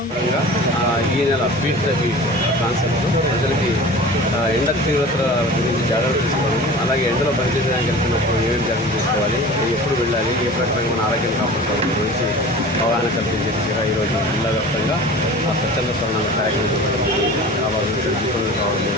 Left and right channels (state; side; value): normal; both; correlation 0.39